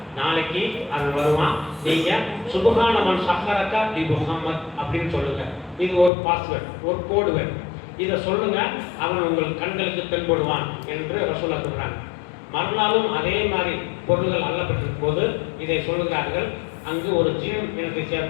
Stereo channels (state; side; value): drops out; right; at 6.1 s